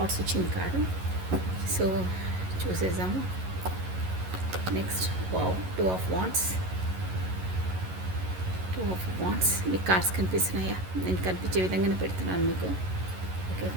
వచ్చింది కార్డు. సో చూసేసాము. Next wow, 2 of Wands. 2 of Wands. మీకు కార్డ్స్ కనిపిస్తున్నాయా? నేను కనిపించే విధంగానే పెడుతున్నాను మీకు. ఓకే,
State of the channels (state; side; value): late; left; 11 ms